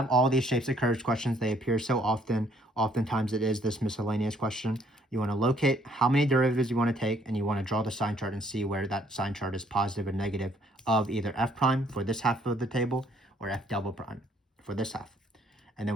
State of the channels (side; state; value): both; normal; correlation 0.64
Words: all these shapes of curves questions. They appear so often. Oftentimes it is this miscellaneous question. You want to locate how many derivatives you want to take, and you want to draw the sign chart and see where that sign chart is positive or negative of either f prime for this half of the table or f double prime for this half. And